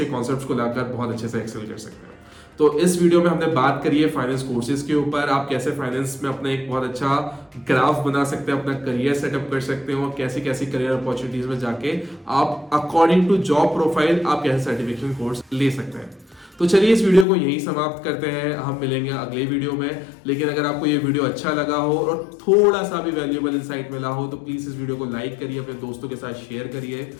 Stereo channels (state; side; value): drops out; right; at 17.2 s